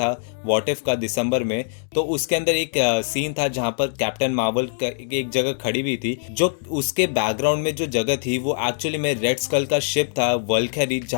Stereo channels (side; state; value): right; silent; 64 dB below the other